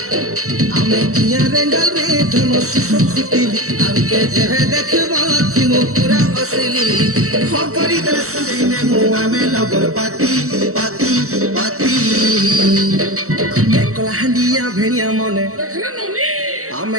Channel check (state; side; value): late; left; 0.64 ms